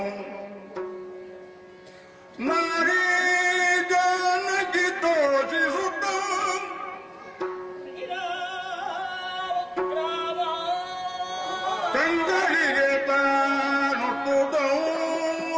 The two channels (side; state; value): both; identical; correlation 1.00